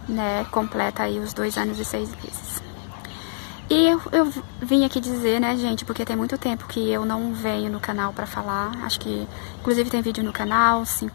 né? Completa aí os 2 anos e 6 meses. E eu vim aqui dizer, né, gente, porque tem muito tempo que eu não venho no canal pra falar. Acho que, inclusive, tem vídeo no canal,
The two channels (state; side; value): silent; right; digital silence